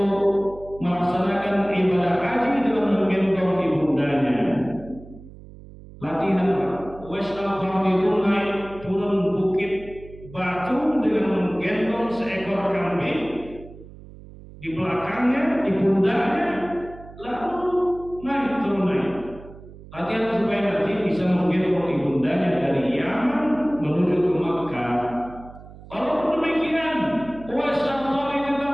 melaksanakan ibadah haji dengan menggendong ibundanya. Latihan wes al-Qarnidun naik turun bukit batu dengan menggendong seekor kambing di belakangnya, di pundaknya, lalu naik turun naik. Latihan supaya nanti bisa menggendong ibundanya dari Yaman menuju ke Makkah. Walaupun demikian, Uwais al-Qarni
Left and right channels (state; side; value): noise; right; hum, 18 dB below the sound